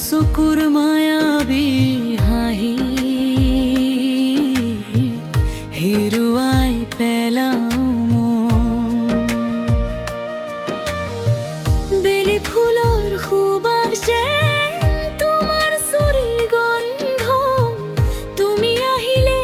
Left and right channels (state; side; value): identical; both; correlation 1.00